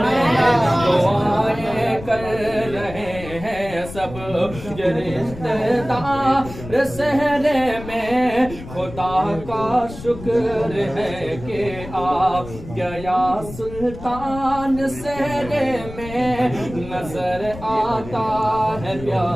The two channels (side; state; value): left; noise; rumble, 13 dB below the sound